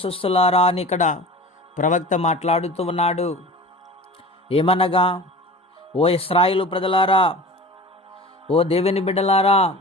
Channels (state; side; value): normal; both; correlation 0.37